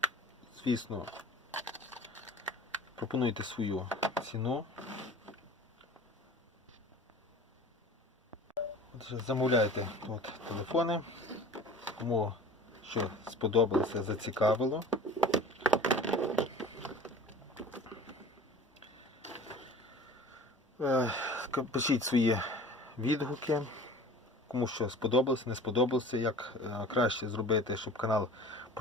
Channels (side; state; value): both; normal; correlation 0.42